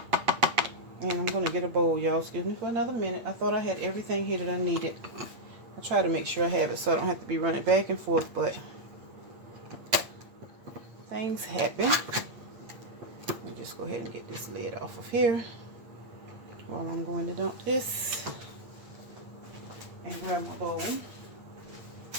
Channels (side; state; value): left; late; 8.5 ms